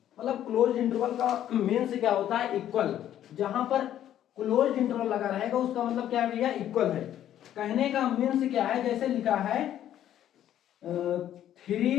मतलब क्लोज इंटरवल का मीन्स क्या होता है? इक्वल। जहां पर क्लोज इंटरवल लगा रहेगा उसका मतलब क्या है भैया? इक्वल है। कहने का मीन्स क्या है? जैसे लिखा है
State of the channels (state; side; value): quieter; right; 11.4 dB